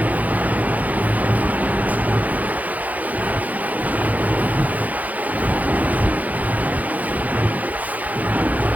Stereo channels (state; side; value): late; left; 0.078 ms